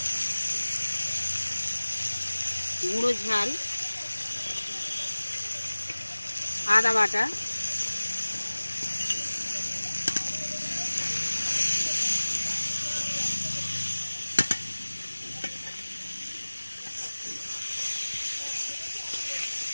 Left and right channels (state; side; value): inverted; both; correlation -1.00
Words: গুঁড়ো ঝাল, আদা বাটা,